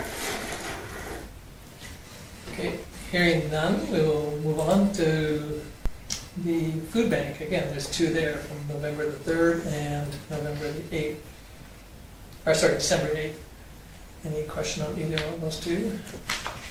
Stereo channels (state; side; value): identical; both; correlation 1.00